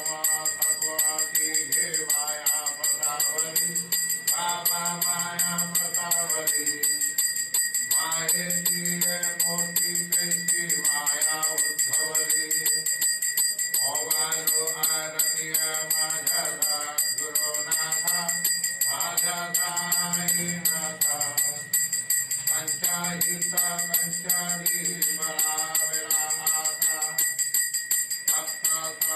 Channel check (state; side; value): identical; both; correlation 1.00